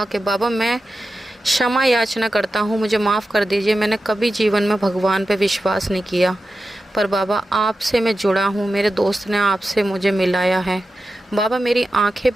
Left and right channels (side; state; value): both; normal; correlation 0.92